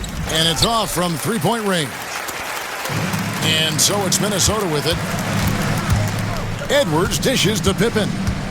it's off from three-point range. And so it's Minnesota with it. Edwards dishes to Pippen.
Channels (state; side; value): identical; both; correlation 1.00